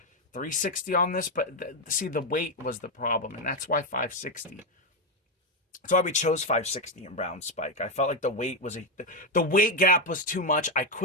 360 on this. But see, the weight was the problem, and that's why 560. That's why we chose 560 in Brown Spike. I felt like the weight gap was too much. I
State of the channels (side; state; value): both; normal; correlation 0.07